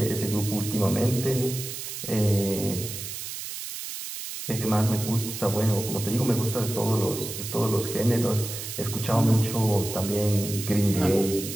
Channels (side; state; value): right; noise; hiss, 8 dB below the sound